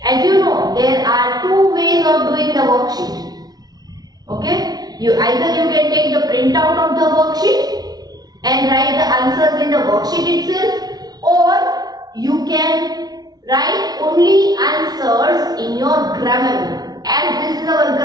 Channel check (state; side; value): late; left; 0.19 ms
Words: as you know, there are 2 ways of doing the worksheet. Okay, either you can take the printout of the worksheet and write the answers in the worksheet itself, or you can write only answers in your grammar book. As this is our